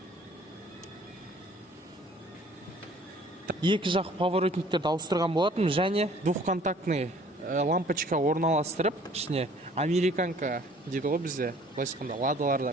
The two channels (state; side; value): normal; both; correlation 0.55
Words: Екі жақ поворотниктерді ауыстырған болатын, және двухконтактный лампочка орналастырып, ішіне американка дейді ғой бізде, былайша айтқанда